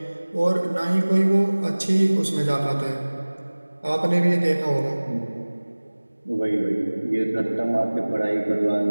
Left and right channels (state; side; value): inverted; both; correlation -1.00